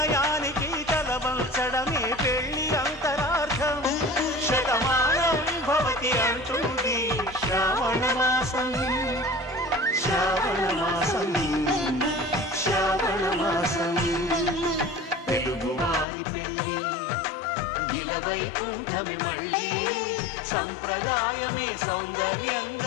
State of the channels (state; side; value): drops out; right; at 16.1 s